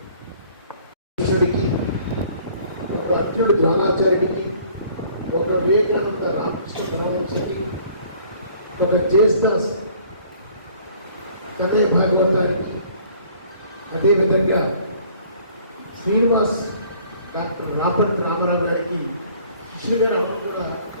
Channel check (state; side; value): inverted; both; correlation -0.56